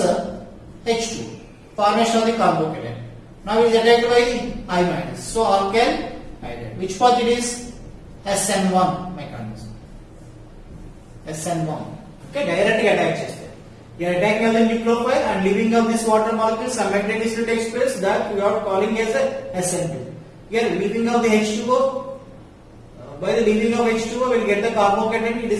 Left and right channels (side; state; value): both; identical; correlation 1.00